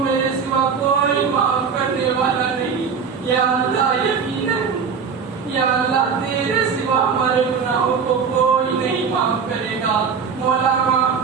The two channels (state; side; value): quieter; left; 6.1 dB